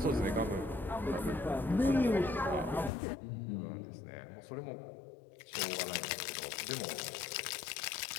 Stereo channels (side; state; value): right; drops out; at 2.9 s